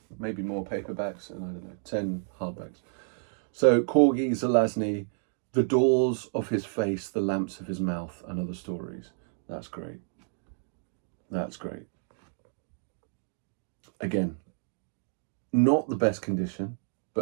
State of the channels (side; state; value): left; silent; digital silence